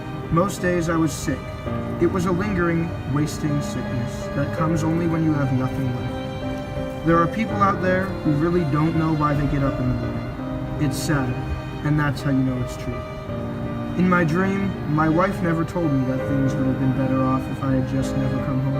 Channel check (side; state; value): both; identical; correlation 1.00